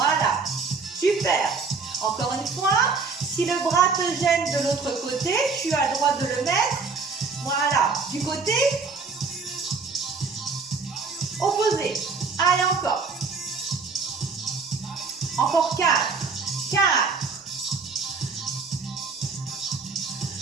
Super. Encore une fois, si le bras te gêne de l'autre côté, tu as le droit de le mettre. Voilà. Du côté opposé. Allez, encore. Encore 4,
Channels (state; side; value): quieter; left; 4.6 dB